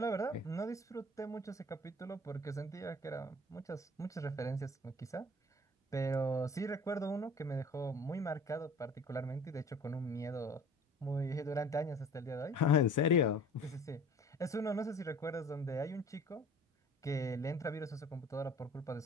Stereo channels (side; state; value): both; normal; correlation 0.46